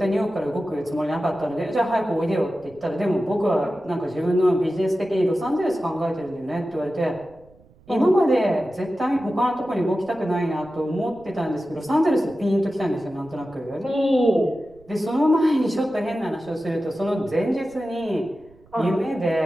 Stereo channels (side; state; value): right; noise; rumble, 27 dB below the sound